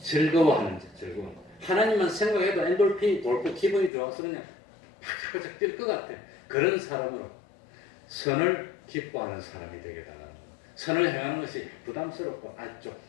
즐거워하는 자, 하나님만 생각해도 엔돌핀이 돌고 기분이 좋아서 그냥 팍팍 뛸 것 같아. 그런 사람으로 선을 기뻐하는 사람이 되게 달라는 거예요. 선을 행하는 것이 부담스럽고 좀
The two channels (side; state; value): right; drops out; at 3.9 s